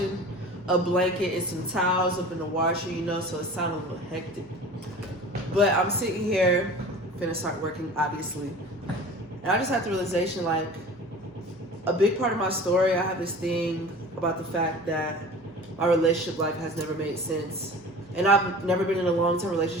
a blanket and some towels up in the washer, so it sounds a little hectic. But I'm sitting here, finna start working, obviously. And I just had the realization like, a big part of my story, I have this thing about the fact that my relationship life has never made sense. And I've never been in a long term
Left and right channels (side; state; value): both; normal; correlation 0.39